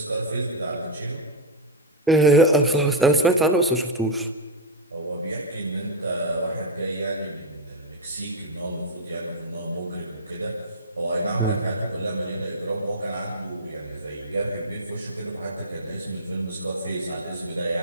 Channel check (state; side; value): normal; both; correlation -0.02